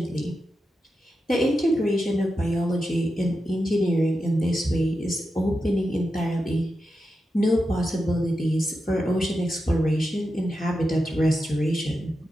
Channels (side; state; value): both; normal; correlation 0.89